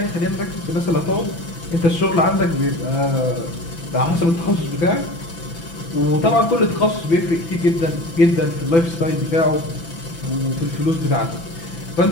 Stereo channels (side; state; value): right; late; 6.0 ms